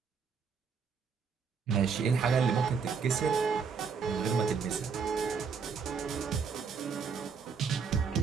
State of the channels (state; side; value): quieter; left; 5.8 dB